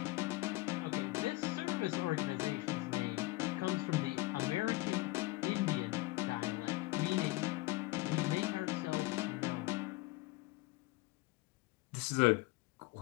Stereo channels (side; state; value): right; quieter; 20.8 dB